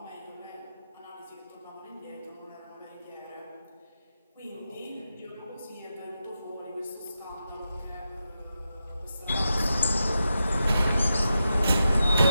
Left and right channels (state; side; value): inverted; both; correlation -0.88